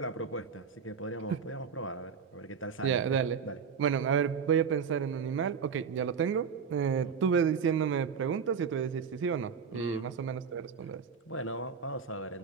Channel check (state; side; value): quieter; left; 6.4 dB